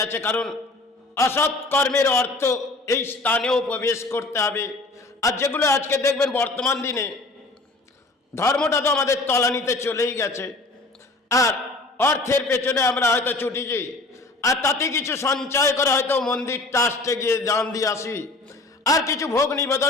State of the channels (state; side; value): quieter; right; 3.1 dB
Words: কারণ অসৎ কর্মের অর্থ এই স্থানেও প্রবেশ করতে হবে। আর যেগুলো আজকে দেখবেন বর্তমান দিনে ধর্মটা তো আমাদের তলানিতে চলেই গেছে, আর অর্থের পেছনে আমরা হয়তো ছুটিছি, আর তাতে কিছু সঞ্চয় করে হয়তো মন্দির ট্রাস্টে গিয়ে দান দিয়ে আসি, আর কিছু ভোগ